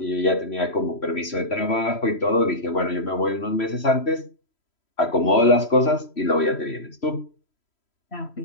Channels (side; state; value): right; late; 3.0 ms